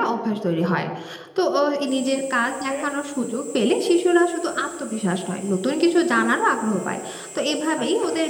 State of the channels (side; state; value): both; identical; correlation 1.00